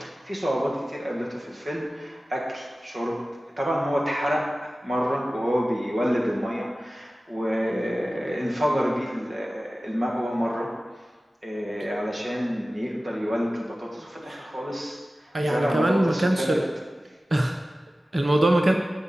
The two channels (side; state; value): both; normal; correlation 0.96